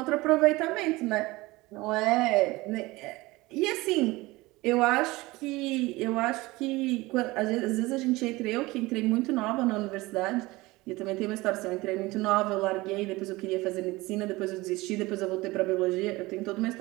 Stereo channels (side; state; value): left; quieter; 21.0 dB